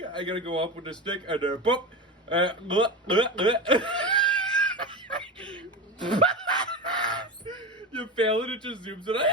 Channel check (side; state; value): both; normal; correlation 0.23